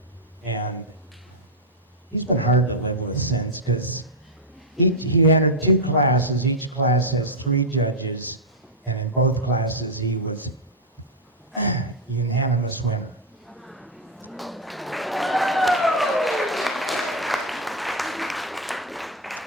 And he's been hard to live with since, because he entered 2 classes. Each class has 3 judges, and in both classes he was unanimous winner.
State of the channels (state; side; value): normal; both; correlation -0.02